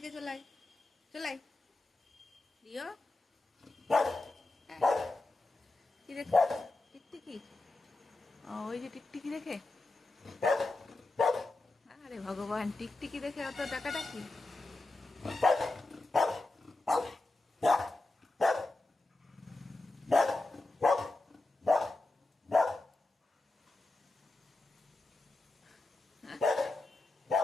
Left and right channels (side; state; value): right; quieter; 3.0 dB